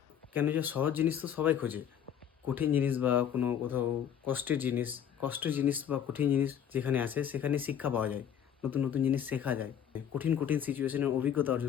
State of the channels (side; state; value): right; quieter; 9.0 dB